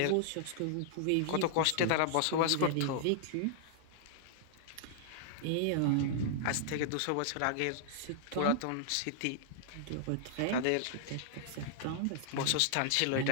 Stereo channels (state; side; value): different; both; correlation -0.01